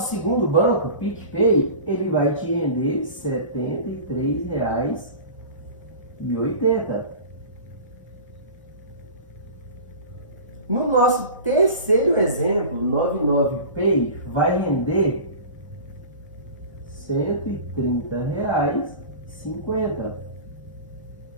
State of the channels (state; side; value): inverted; both; correlation -0.36